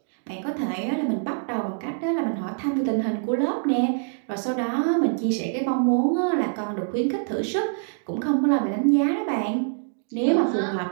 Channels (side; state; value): left; silent; digital silence